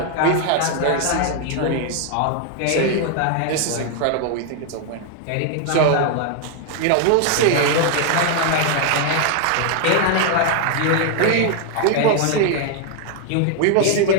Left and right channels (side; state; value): both; different; correlation 0.00